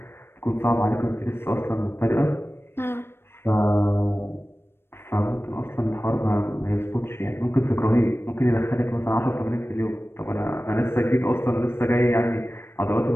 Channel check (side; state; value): right; late; 0.12 ms